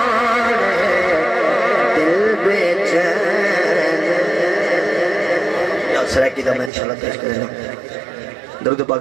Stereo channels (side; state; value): left; drops out; at 6.7 s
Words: دل بے چین سرائکی دا میں انشاءاللہ پیش کریں درود